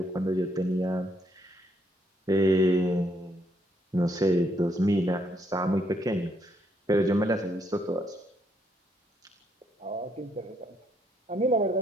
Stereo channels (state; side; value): normal; both; correlation 0.73